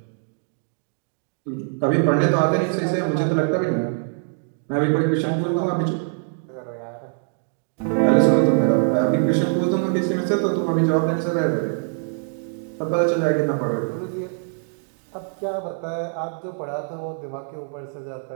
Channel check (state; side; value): silent; left; 63 dB below the other